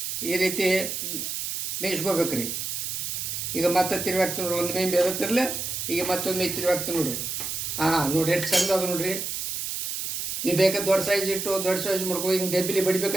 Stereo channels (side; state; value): right; noise; hiss, 3 dB below the sound